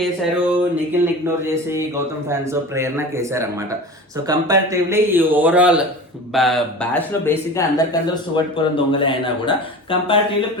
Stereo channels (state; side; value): normal; both; correlation 0.34